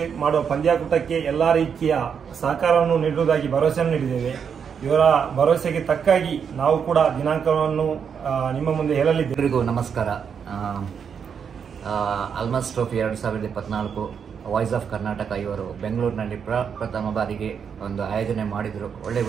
ಮಾಡುವ ಪಂದ್ಯಾಕೂಟಕ್ಕೆ ಎಲ್ಲ ರೀತಿಯ ಸಹಕಾರವನ್ನು ನೀಡುವುದಾಗಿ ಭರವಸೆಯನ್ನು ನೀಡಿದ್ದೇವೆ. ಇವರ ಭರವಸೆಗೆ ತಕ್ಕಾಗಿ ನಾವು ಕೂಡ ದಿನಾಂಕವನ್ನು ನಿಮ್ಮ ಮುಂದೆ ಹೇಳಲಿದ್ದೇವೆ. ಎಲ್ಲರಿಗೂ ನಮಸ್ಕಾರ. ಎಲ್ಮಾಸ್ ಟ್ರೋಫಿ 2024 ವಾಯ್ಸ್ ಆಫ್ ಕರ್ನಾಟಕ ಇವರು ಬೆಂಗಳೂರಿನಲ್ಲಿ ಪ್ರಥಮ ಬಾರಿಗೆ ಒಂದು ಆಯೋಜನೆ ಮಾಡಿದರು. ಒಳ್ಳೆಯ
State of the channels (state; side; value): quieter; left; 7.0 dB